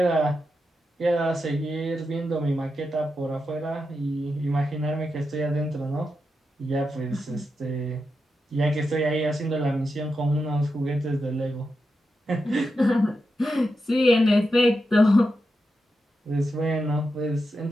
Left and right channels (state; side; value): normal; both; correlation 0.87